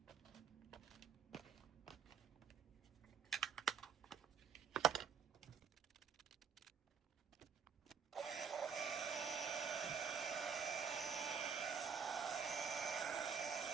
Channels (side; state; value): left; quieter; 6.9 dB